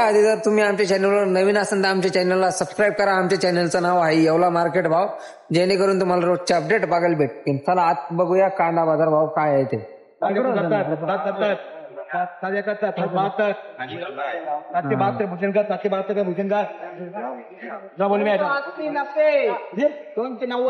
आधी जर तुम्ही आमच्या चॅनलवर नवीन असाल तर आमच्या चॅनलला सबस्क्राईब करा. आमच्या चॅनलचं नाव आहे येवला मार्केट भाव, जेणेकरून तुम्हाला रोजचे अपडेट बघायला भेटतील. चला आज बघूया कांदा बाजार भाव काय आहे ते. 772 भूषण का 772 का भूषण का ना बोल मी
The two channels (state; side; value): identical; both; correlation 1.00